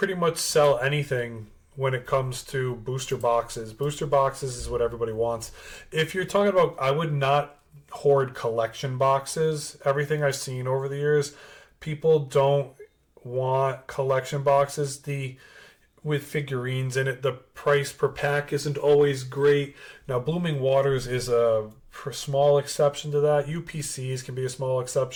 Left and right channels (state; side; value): identical; both; correlation 1.00